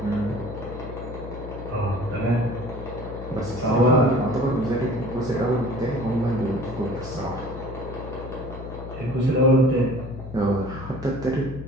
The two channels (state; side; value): noise; left; hum, 11 dB below the sound